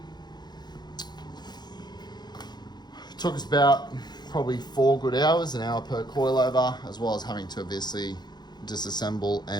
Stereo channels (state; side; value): late; right; 0.21 ms